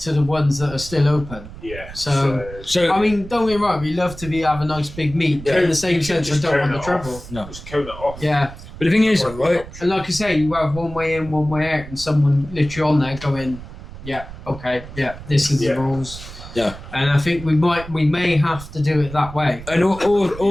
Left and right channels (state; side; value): noise; right; rumble, 14 dB below the sound